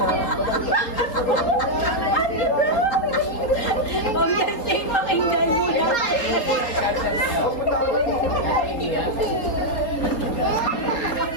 Ma'am, yan safe, pakinggan mo lang.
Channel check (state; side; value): late; right; 3.8 ms